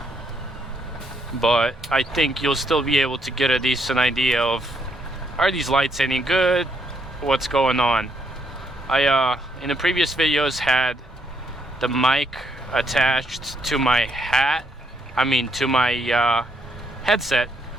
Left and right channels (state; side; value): normal; both; correlation 0.73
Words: But I think you'll still be able to get a decent idea of, are these lights any good? What's going on? I in the previous videos had the mic attached to my to my headset,